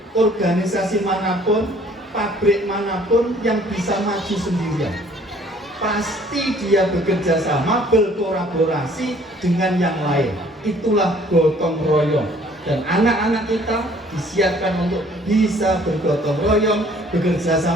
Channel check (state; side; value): normal; both; correlation 0.57